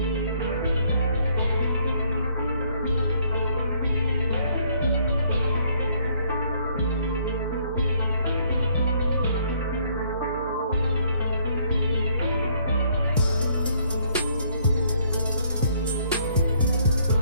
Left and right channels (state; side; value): inverted; both; correlation -0.65